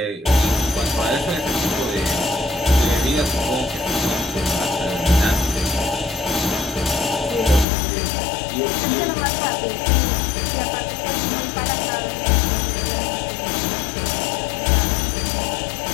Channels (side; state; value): right; drops out; at 7.7 s